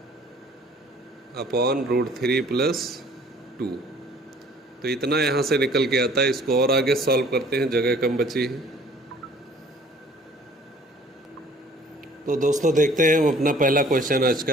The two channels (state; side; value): normal; both; correlation 0.54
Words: upon √3 plus 2। तो इतना यहाँ से निकल के आता है। इसको और आगे सॉल्व करते हैं, जगह कम बची है। तो दोस्तों देखते हैं हम अपना पहला क्वेश्चन आज